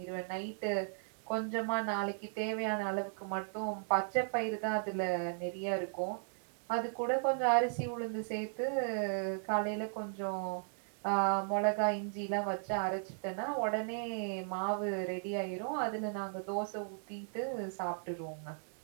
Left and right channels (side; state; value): left; silent; 54 dB below the other